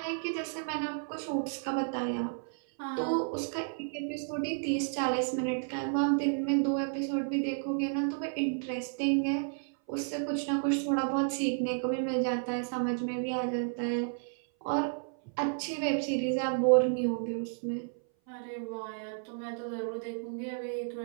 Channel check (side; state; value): left; silent; 56 dB below the other